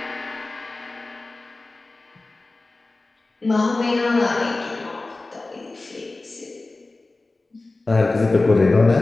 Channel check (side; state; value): right; quieter; 3.2 dB